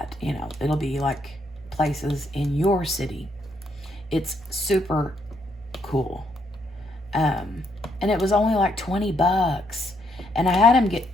you know, it'll be like places in your city. It's super cool. And it was only like $20, and I had him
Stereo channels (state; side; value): normal; both; correlation 0.74